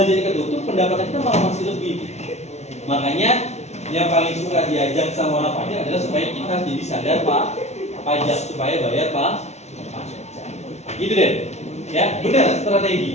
ketutup pendapatan kita malah masih lebih. Makanya yang paling suka diajak sama orang pajak adalah supaya kita jadi sadar Pak pajak supaya bayar Pak. Gitu deh, ya benar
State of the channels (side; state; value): right; late; 0.32 ms